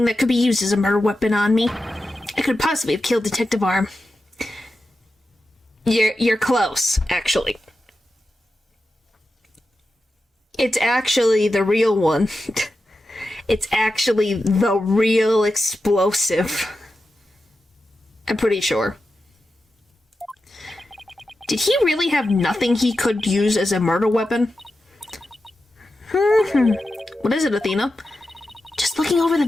that could be used as a murder weapon on me. I could possibly have killed Detective Arm. You're close, actually. It's actually the real one. It's actually the real explosive. I'm pretty sure. Did he really have nothing he could use as a murder weapon? What is it, Athena? Just looking over the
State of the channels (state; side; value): normal; both; correlation 0.91